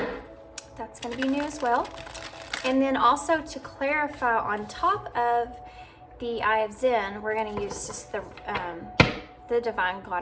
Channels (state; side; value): identical; both; correlation 1.00